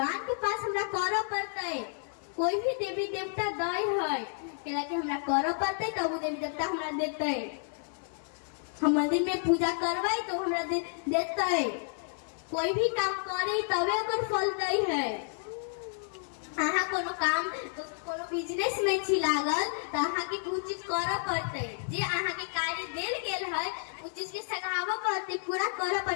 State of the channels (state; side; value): silent; right; digital silence